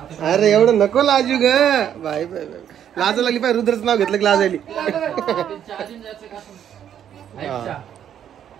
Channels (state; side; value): quieter; left; 9.7 dB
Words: अरे एवढं नको लाजू ग बाई. बाई लाज लागली पाय. रुद्रच नाव घेतलं की लाज आली.